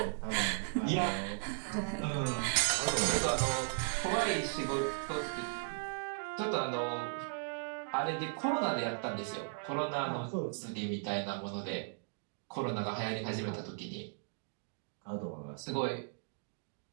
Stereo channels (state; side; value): silent; left; digital silence